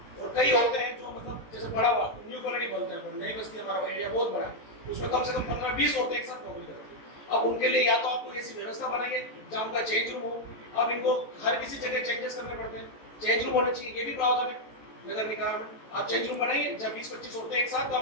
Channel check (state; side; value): late; right; 13 ms